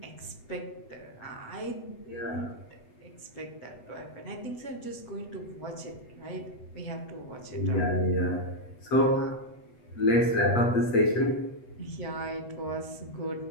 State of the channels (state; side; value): late; right; 8.0 ms